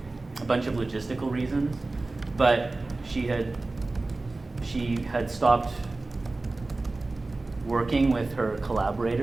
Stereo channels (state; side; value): quieter; left; 3.2 dB